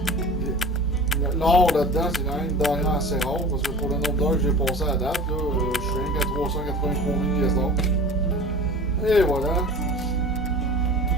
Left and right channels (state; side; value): normal; both; correlation 0.38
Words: L'or là-dedans, c'est quand même une denrée assez rare parce que pour le nombre d'heures que j'ai passé à date, là, je suis rien qu'à 383 000 pièces d'or. Et voilà.